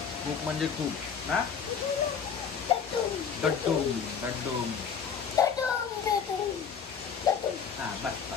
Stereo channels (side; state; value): right; quieter; 6.8 dB